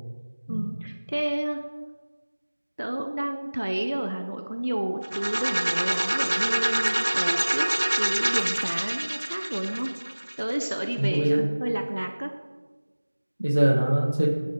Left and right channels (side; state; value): both; inverted; correlation -1.00